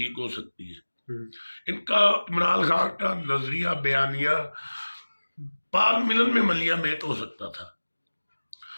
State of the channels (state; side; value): inverted; both; correlation -1.00